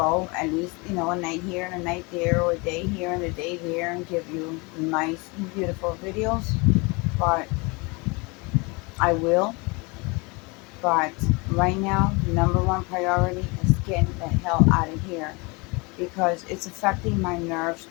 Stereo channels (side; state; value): right; quieter; 27.8 dB